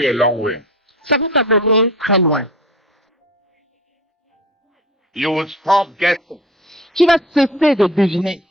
a long way. ça va t'amener très loin. You will stop guessing. Tu vas cesser de deviner.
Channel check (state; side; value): normal; both; correlation 0.37